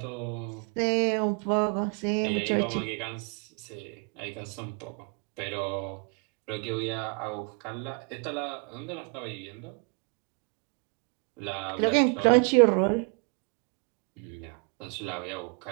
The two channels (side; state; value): left; quieter; 33.7 dB